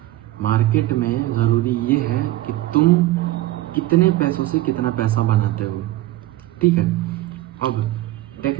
मार्केट में ज़रूरी ये है कि तुम कितने पैसों से कितना पैसा बनाते हो, ठीक है। अब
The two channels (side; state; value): left; quieter; 16.3 dB